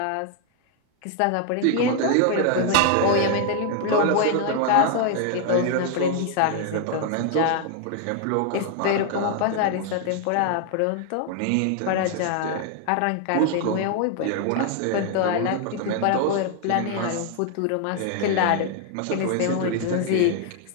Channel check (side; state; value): both; different; correlation 0.00